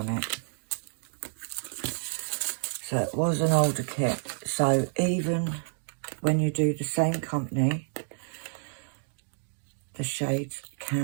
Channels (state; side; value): silent; left; digital silence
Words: it. So it was an older kit. So even when you do the same company, the shades